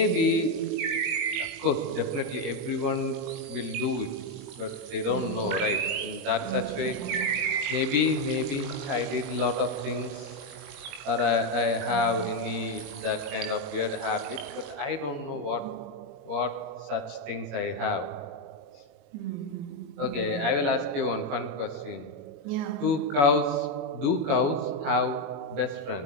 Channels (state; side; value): late; left; 21 ms